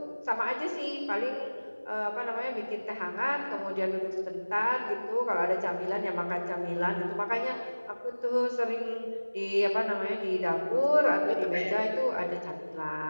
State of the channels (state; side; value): inverted; both; correlation -1.00